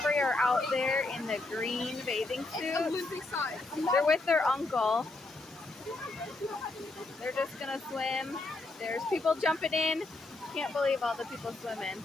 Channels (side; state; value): right; quieter; 3.1 dB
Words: are out there in the green bathing suits. They're with their uncle. They're just gonna swim. There's people jumping in. Can't believe all the people swimming.